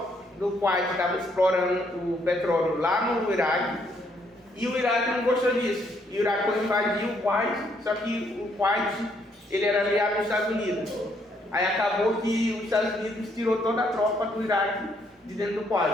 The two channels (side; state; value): both; normal; correlation 0.71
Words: do Kuwait estava explorando o petróleo lá no Iraque e o Iraque não gostou disso. E o Iraque foi invadir o Kuwait, só que o Kuwait ele era aliado dos Estados Unidos. Aí acabou que os Estados Unidos tirou toda a tropa do Iraque de dentro do